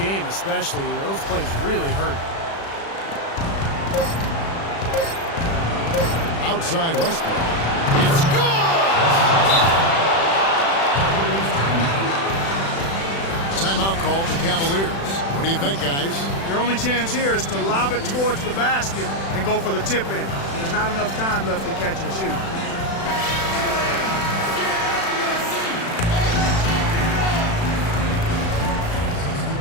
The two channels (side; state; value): right; late; 36 ms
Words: especially, those plays really hurt. Outside Westbrook. It's good! Timeout called the Cavaliers. What do you think, guys? Their only chance here is to lob it towards the basket and go for the tip in. There's not enough time left to catch and shoot.